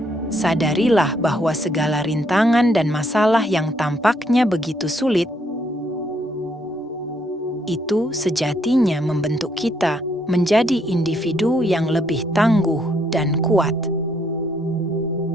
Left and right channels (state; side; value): normal; both; correlation 0.71